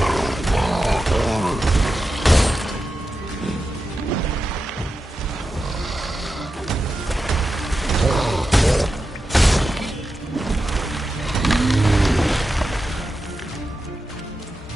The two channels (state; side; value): normal; both; correlation 0.90